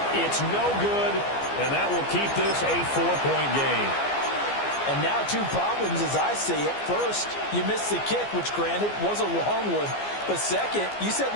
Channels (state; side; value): late; right; 14 ms